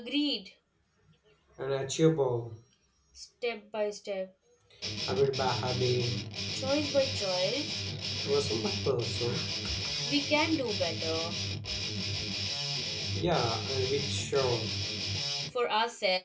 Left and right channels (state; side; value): identical; both; correlation 1.00